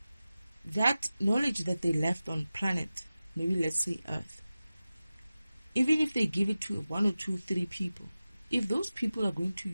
that knowledge that they left on planet, maybe let's say Earth, even if they give it to one or two, three people, if those people are going to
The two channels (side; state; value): both; inverted; correlation -0.95